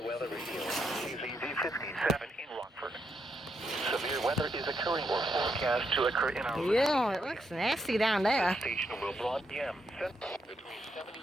weather radio. KZZ 57 in Rockford. Severe weather is occurring or forecast to occur in our... Yeah, it looks nasty down there. The station will broad PM between 79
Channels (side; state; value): both; normal; correlation 0.80